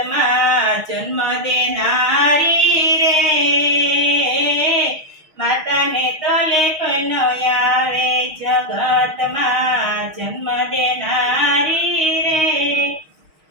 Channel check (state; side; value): late; left; 6.4 ms